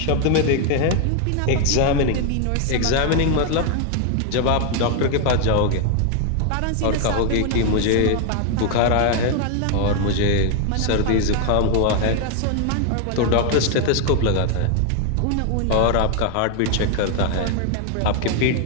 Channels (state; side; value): different; both; correlation 0.00